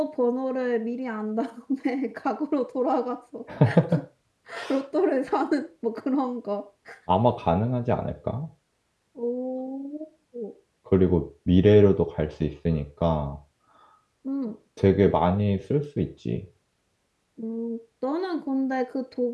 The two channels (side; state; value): both; identical; correlation 1.00